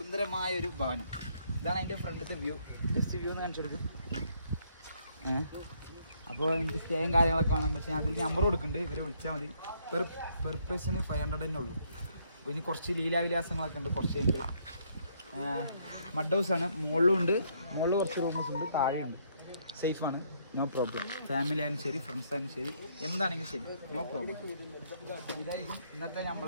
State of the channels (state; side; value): inverted; both; correlation -0.69